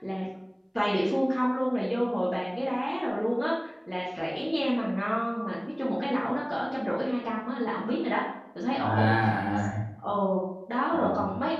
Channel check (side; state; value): both; identical; correlation 1.00